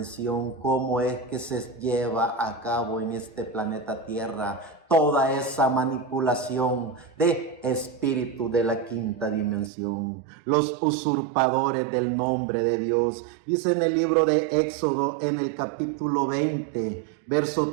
cómo es que se lleva a cabo en este planeta Tierra toda esa manipulación de espíritu de la quinta dimensión, los usurpadores del nombre de Dios. Dice en el libro de Éxodo, en el capítulo 20, verso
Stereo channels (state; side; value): drops out; left; at 9.7 s